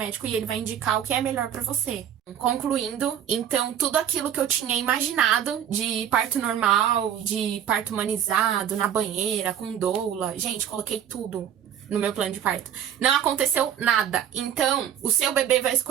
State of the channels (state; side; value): quieter; left; 9.5 dB